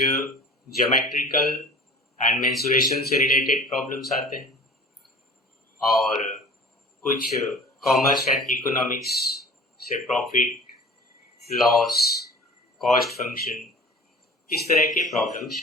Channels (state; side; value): normal; both; correlation 0.43